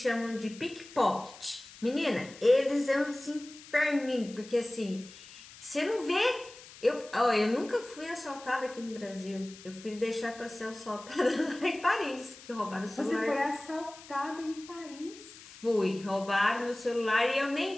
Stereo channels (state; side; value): noise; left; hiss, 18 dB below the sound